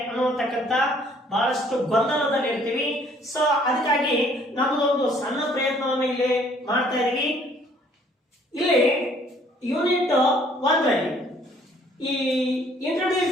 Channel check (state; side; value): normal; both; correlation 0.60